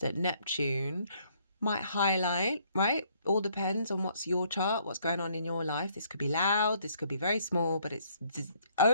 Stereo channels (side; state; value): both; inverted; correlation -0.66